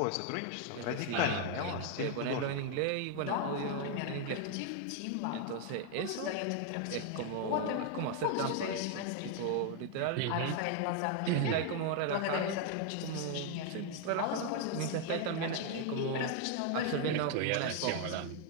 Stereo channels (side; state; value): both; different; correlation 0.00